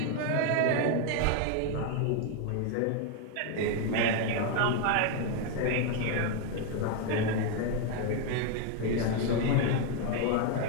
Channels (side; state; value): both; different; correlation 0.01